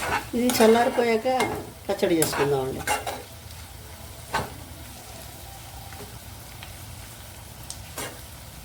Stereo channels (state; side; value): identical; both; correlation 1.00